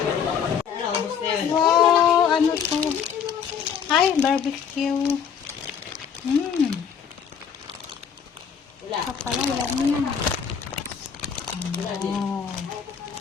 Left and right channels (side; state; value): right; quieter; 7.3 dB